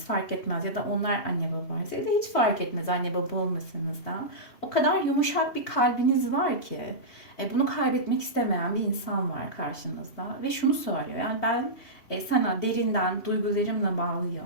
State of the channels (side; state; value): right; late; 2.8 ms